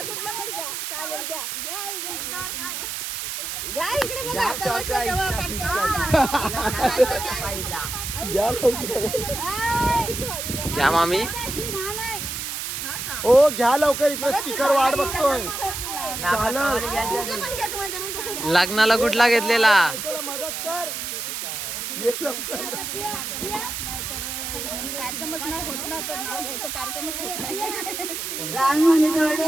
क्या मामी? ओ घ्या लवकर, इकडे स्पीकर वाट बघतोय. लग्नाला कुठला घेतलेला? मदत कर, ये लवकर. कार्यक्रमच नाही होत ना, तर नाव घ्यायचं कार्यक्रमच होत नाही. लहान म्हणे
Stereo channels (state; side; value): noise; right; hiss, 5 dB below the sound